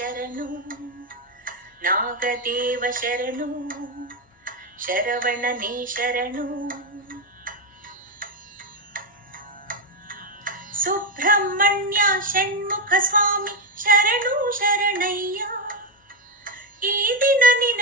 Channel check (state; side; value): normal; both; correlation 0.06